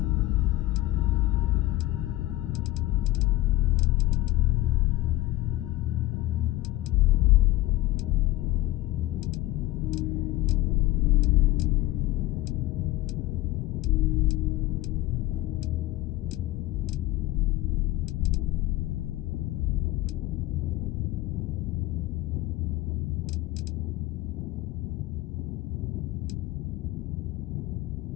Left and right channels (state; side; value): quieter; right; 17.4 dB